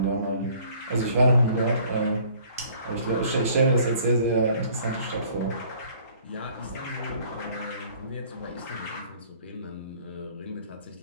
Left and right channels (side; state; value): both; inverted; correlation -0.56